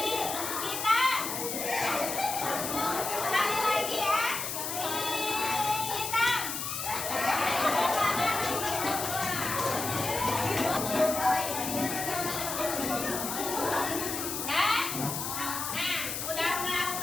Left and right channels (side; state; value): left; noise; hiss, 4 dB below the sound